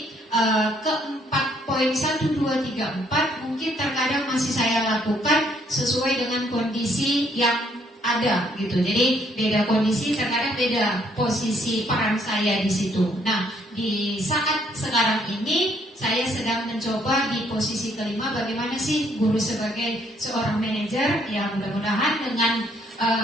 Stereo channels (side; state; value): both; normal; correlation 0.68